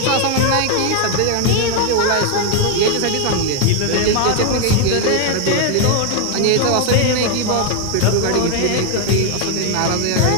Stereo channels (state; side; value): different; both; correlation 0.01